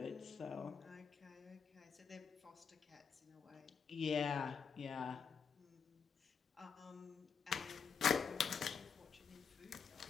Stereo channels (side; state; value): right; quieter; 6.3 dB